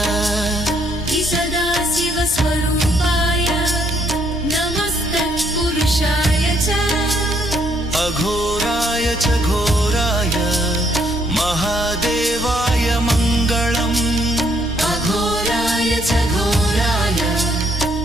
सदाशिवस्वरूपाय नमस्तत्पुरुषाय च अघोराय च घोराय महादेवाय मङ्गलम् अघोराय च घोराय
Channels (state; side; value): normal; both; correlation 0.70